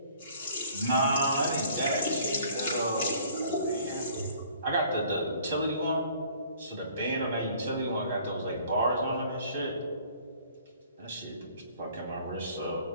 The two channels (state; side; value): inverted; both; correlation -0.55